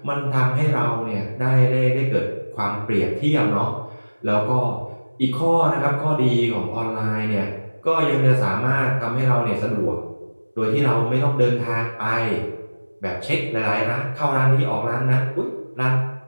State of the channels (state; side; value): inverted; both; correlation -1.00